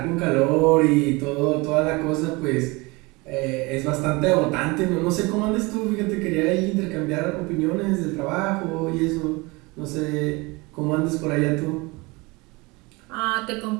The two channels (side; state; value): left; quieter; 25.1 dB